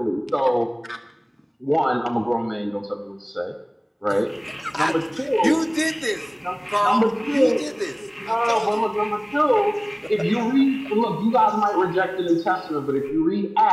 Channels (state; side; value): identical; both; correlation 1.00